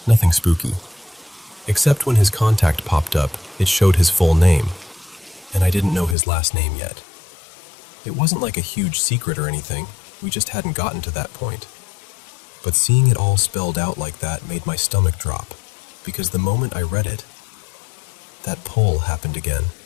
nothing spooky. Except when his contact popped up, it showed his full name. and I didn't know his last name yet. It wasn't like a huge secret or anything, we just hadn't gotten to that point. But seeing it all spelled out like that made my stomach drop, because the moment I read it, that pull happened again.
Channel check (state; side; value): drops out; right; at 6.2 s